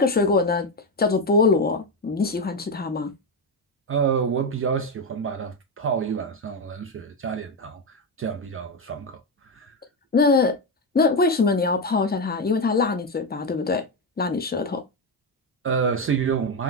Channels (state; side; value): normal; both; correlation 0.10